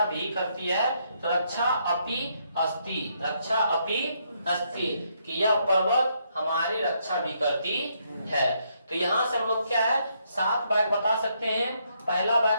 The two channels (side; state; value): both; inverted; correlation -0.74